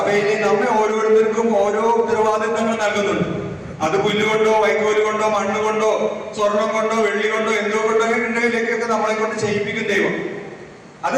നമ്മെ ഓരോരുത്തർക്കും ഓരോ ഉത്തരവാദിത്തങ്ങൾ നൽകുന്നുണ്ട്. അത് പുല്ലുകൊണ്ടോ വൈക്കോല് കൊണ്ടോ മണ്ണ് കൊണ്ടോ സ്വർണം കൊണ്ടോ വെള്ളി കൊണ്ടോ എന്തോ കൊണ്ടോ ഉണ്ടെങ്കിലേക്കൊക്കെ നമ്മളെ കൊണ്ട് ചെയ്യിപ്പിക്കും ദൈവം. അത്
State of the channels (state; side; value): identical; both; correlation 1.00